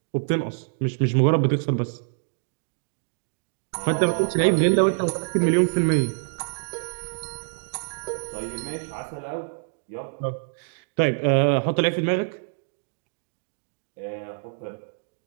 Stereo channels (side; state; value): left; silent; digital silence